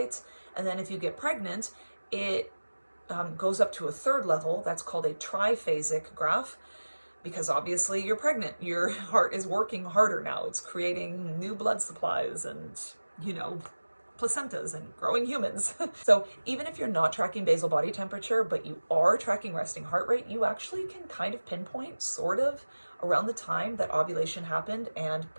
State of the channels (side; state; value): both; inverted; correlation -1.00